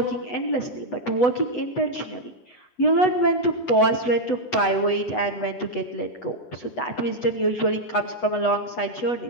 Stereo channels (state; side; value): late; right; 8.1 ms